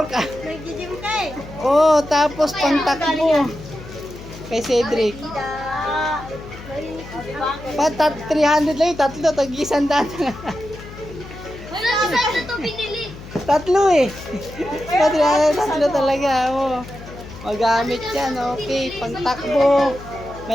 Nag-gym ka eh. Oh, tapos pang takbo. Kay Cedric. Patat 300 lang yung tatlo. Tag-isandaan. Wala isa na to binili. Tatlo eh. Tatlo talaga. Oh. Magamit yan. Okay. Pang takbo.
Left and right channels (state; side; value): noise; left; hum, 15 dB below the sound